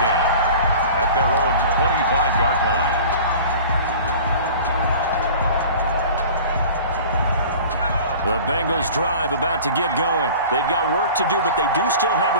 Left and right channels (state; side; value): inverted; both; correlation -0.41